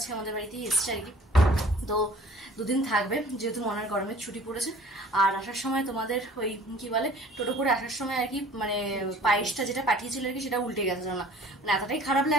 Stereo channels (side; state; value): both; normal; correlation 0.50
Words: আমাদের বাড়িতেই এসছে আর কি। তো 2 দিন থাকবে, যেহেতু মনের গরমের ছুটি পড়েছে। আর আসার সময় তোমাদের ওই কি বলে টোটো করে আসার সময় আর কি মানে পায়েসটা যেটা পাঠিয়েছিল আর কি সেটা উল্টে গেছে না, মানে এতটাই খারাপ